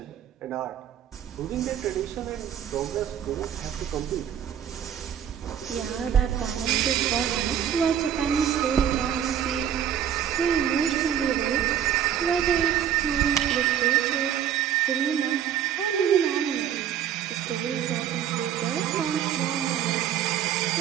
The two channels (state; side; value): quieter; left; 9.5 dB